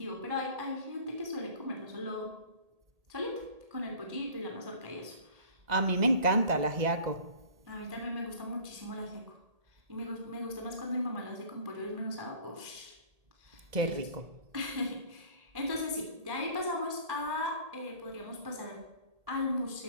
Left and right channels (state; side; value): late; left; 1.8 ms